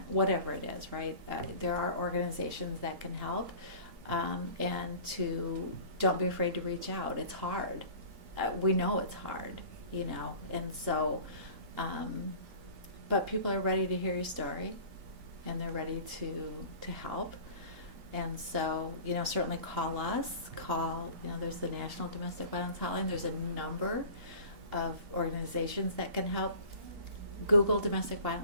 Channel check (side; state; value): left; late; 3.8 ms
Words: whatever it is, right? There are organizations that can help, and don't be afraid to reach out. It's hard. We know it's hard, and so. But people are ready to hear your story, and they're ready to help. And so, certainly call us. There's the National Domestic Violence Hotline. There's a number of organizations that can help. Google domestic